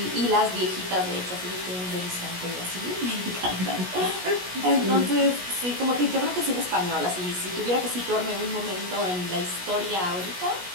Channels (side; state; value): left; late; 17 ms